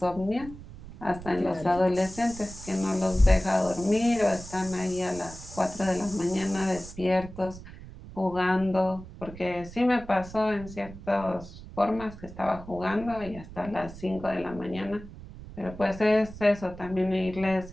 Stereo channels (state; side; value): noise; right; rumble, 15 dB below the sound